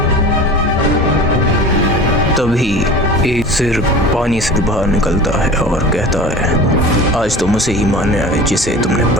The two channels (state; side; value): normal; both; correlation 0.37